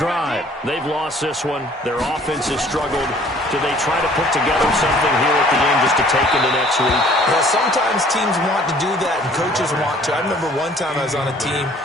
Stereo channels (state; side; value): normal; both; correlation 0.55